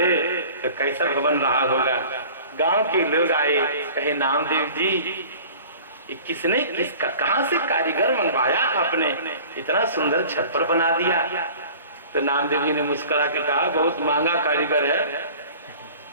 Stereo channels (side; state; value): both; inverted; correlation -0.44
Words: तो कैसा भवन रहा होगा। गांव के लोग आए, कहे नामदेव जी किसका कहां से कारीगर मंगवाया आपने, इतना सुंदर छप्पर बना दिया। तो नामदेव जी ने मुस्कुरा के कहा बहुत महंगा कारीगर है।